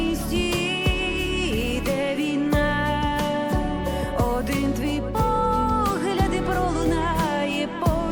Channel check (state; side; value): identical; both; correlation 1.00